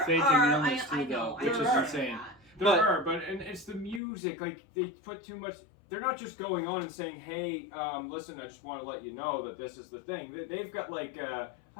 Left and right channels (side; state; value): right; drops out; at 4.0 s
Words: illness too, though, which is insane. There are, but it's the music. Like they put too much. They're not just going on and saying, "Hey, listen, I just want to let you know that this is the thing." They've got like, "I